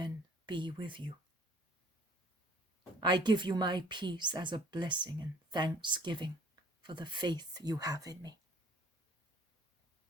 be with you. I give you my peace as a blessing and thanksgiving for the faith you have in me.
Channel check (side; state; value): both; normal; correlation 0.54